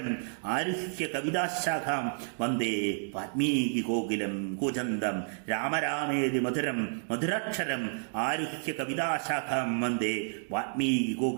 ആരുഹ്യ കവിതാശാഖാം വന്ദേ വാൽമീകി കോകിലം. കൂജന്തം രാമരാമേതി മധുരം മധുരാക്ഷരം ആരുഹ്യ കവിതാശാഖാം വന്ദേ വാൽമീകി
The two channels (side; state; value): left; silent; digital silence